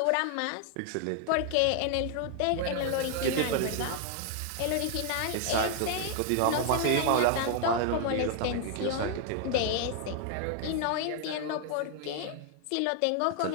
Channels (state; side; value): different; both; correlation 0.00